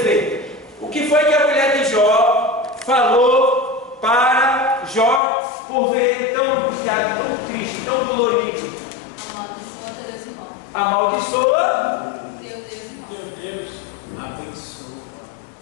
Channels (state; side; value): drops out; right; at 5.2 s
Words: o que foi que a mulher de Jó falou para Jó por ver ele tão angustiado, tão triste, tão dolorido. Amaldiçoa Deus e morre. Amaldiçoa Deus Abençoa.